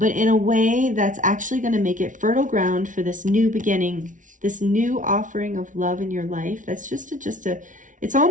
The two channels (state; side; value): late; left; 0.37 ms